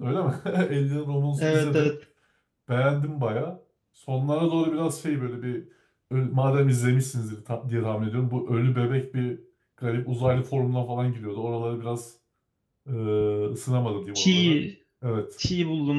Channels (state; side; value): identical; both; correlation 1.00